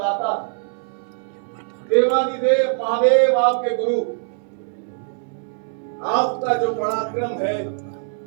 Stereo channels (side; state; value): left; silent; 64 dB below the other